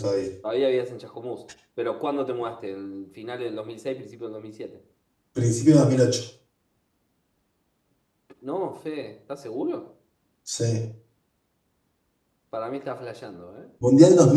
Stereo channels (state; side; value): identical; both; correlation 1.00